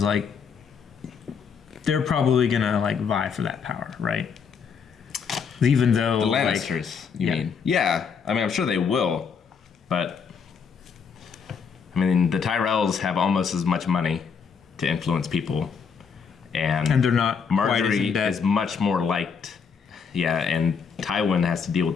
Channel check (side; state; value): right; quieter; 6.2 dB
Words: like they're probably gonna like vie for that power, right? Even though The Lannisters, you mean? Yeah, I mean, I'm sure they will, but I mean, the Tyrells have almost as much money to influence people, and they're not quite as Marjorie in debt. is much more liked. Yeah, and Tywin has to deal with